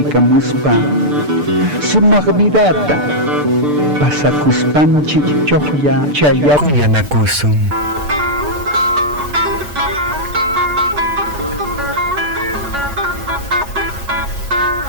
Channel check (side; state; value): left; late; 6.7 ms